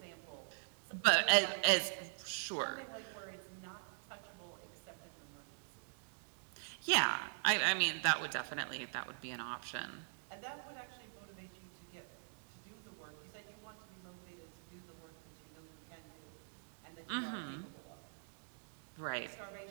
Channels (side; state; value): left; silent; digital silence